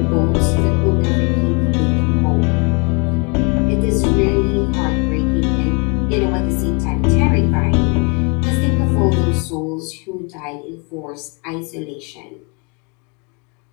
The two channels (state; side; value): quieter; right; 33.3 dB